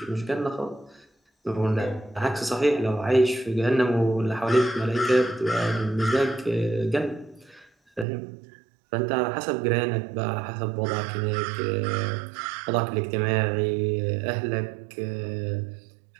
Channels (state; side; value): drops out; left; at 8.1 s